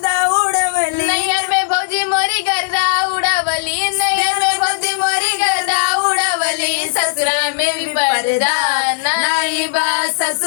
उड़ावली, नैयर में भौजी मोरी गर्दा उड़ावली, नैयर में भौजी मोरी गर्दा उड़ावली, ससुरा में भी पर्दा नहीं बा,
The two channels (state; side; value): silent; right; digital silence